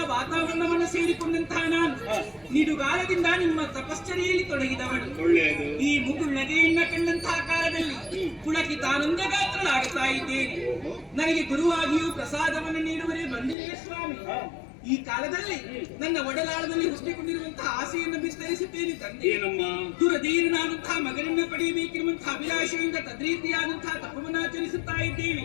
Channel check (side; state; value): right; drops out; at 13.6 s